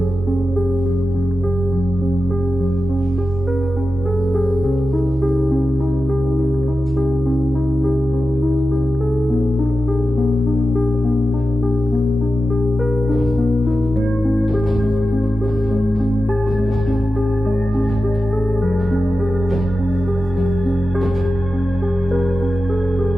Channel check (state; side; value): normal; both; correlation 0.92